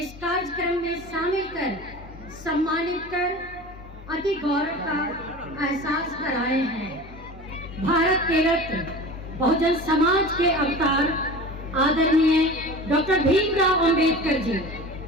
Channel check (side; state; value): both; normal; correlation 0.36